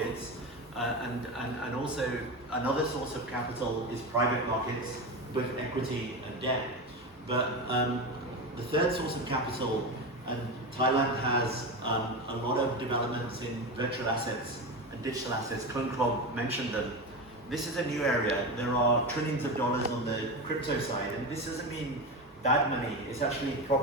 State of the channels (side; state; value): both; normal; correlation 0.20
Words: and also another source of capital is private markets, both equity and debt. But the third source of capital, and Thailand has a lot of developments in virtual assets digital assets, Club mentioned them. This is a new area. There are trillions of dollars on the crypto side, and this doesn't mean bad money. It's actually